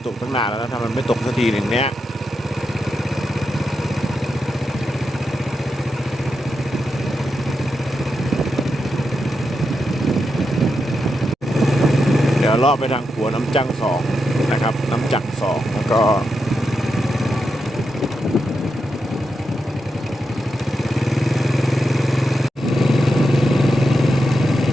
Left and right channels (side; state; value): both; normal; correlation 0.86